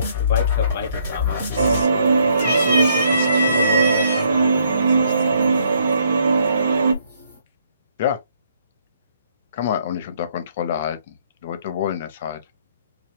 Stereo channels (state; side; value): inverted; both; correlation -0.69